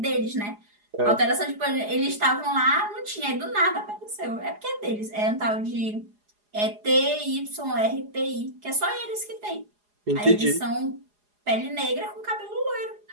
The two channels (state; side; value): late; left; 4.8 ms